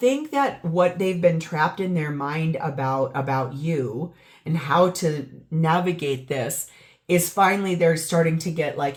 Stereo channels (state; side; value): identical; both; correlation 1.00